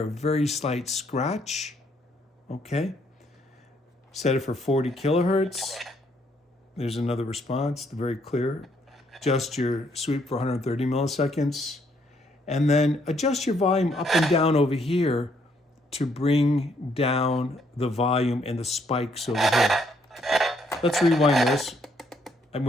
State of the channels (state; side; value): normal; both; correlation 0.70